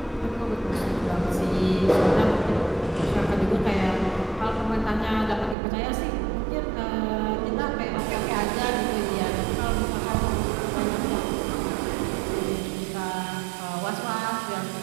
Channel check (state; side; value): drops out; left; at 5.6 s